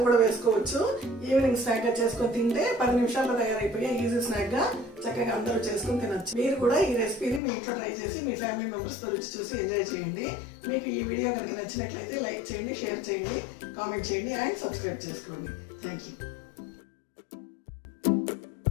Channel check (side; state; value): right; drops out; at 7.4 s